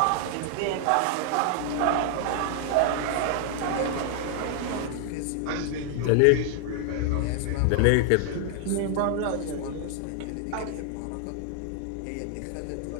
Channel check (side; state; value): both; different; correlation 0.00